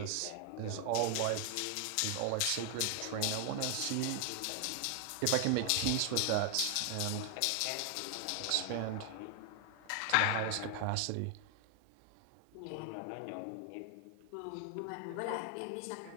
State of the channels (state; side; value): different; both; correlation 0.00